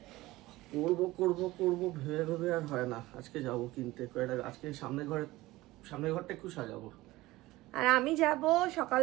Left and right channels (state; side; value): quieter; left; 18.5 dB